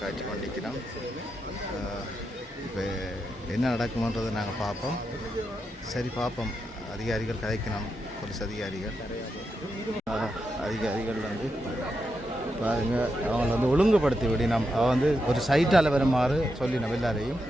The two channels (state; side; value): normal; both; correlation 0.85